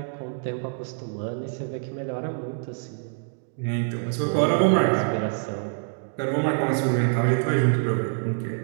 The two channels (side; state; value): left; silent; digital silence